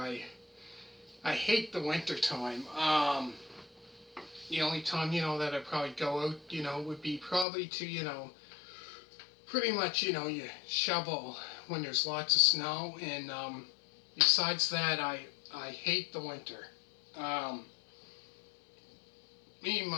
hate the winter time. The only time, that I probably go out, would be probably to, pretty much, you shovel when there's lots of snow. And besides that, I hate the winter. Um, Me,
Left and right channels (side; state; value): right; drops out; at 7.5 s